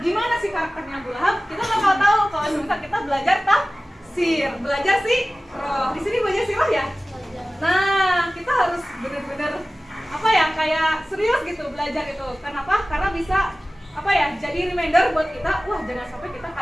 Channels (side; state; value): both; normal; correlation 0.97